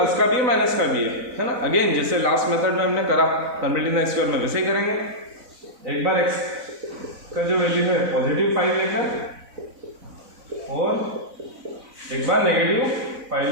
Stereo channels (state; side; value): late; left; 4.0 ms